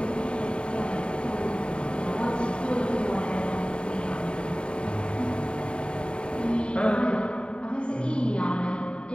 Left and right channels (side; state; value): right; late; 0.054 ms